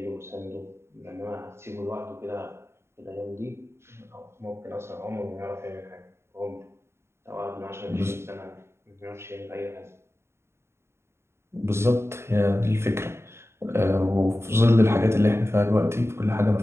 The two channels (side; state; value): left; late; 0.12 ms